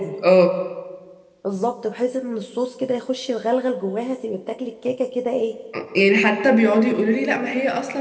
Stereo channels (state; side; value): identical; both; correlation 1.00